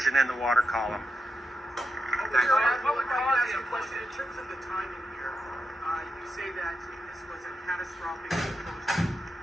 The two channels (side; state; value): both; normal; correlation 0.87